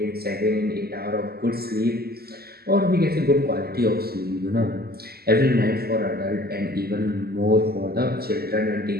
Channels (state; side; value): late; left; 0.45 ms